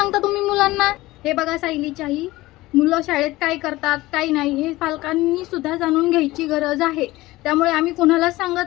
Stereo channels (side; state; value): right; quieter; 18.7 dB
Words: तुम्ही मुलांना? हे बघा सायलीची आई, मुलं शाळेत काय करतात काय नाही हे पालकांनी सुद्धा जाणून घ्यायची गरज आहे. त्यामुळे आम्ही कोणालाच